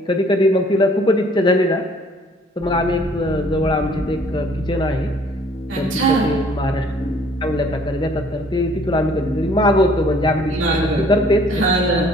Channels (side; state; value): both; normal; correlation 0.58